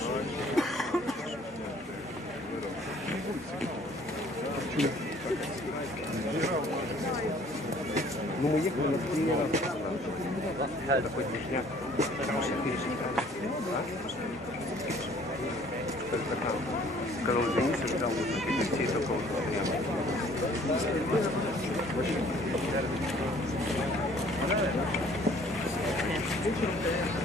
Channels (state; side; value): normal; both; correlation 0.56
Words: Ну, мы ехали на 3 раза. Это хоть движняк. Сказал, извините, ждал высоких детей, только вот стоял.